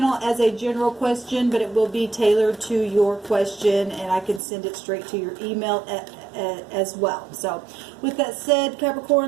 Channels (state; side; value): drops out; left; at 4.4 s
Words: as a general question, but it will be tailored to your question, and I can send it straight to your email as well. So with that said,